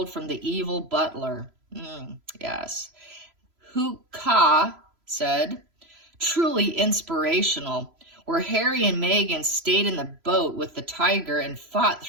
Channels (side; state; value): left; late; 3.0 ms